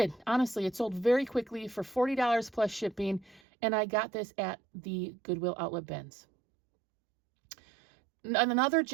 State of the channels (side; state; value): left; drops out; at 3.4 s